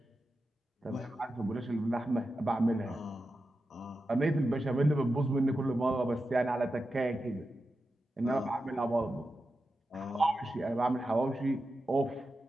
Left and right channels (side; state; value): both; normal; correlation 0.90